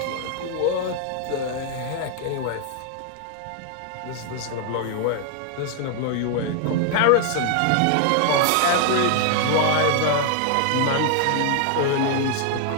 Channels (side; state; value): both; different; correlation 0.00